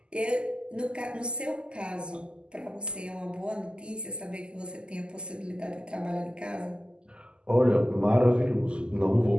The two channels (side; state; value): left; late; 0.049 ms